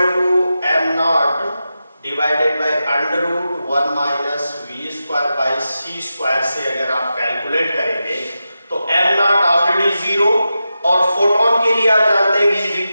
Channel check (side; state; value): both; inverted; correlation -0.91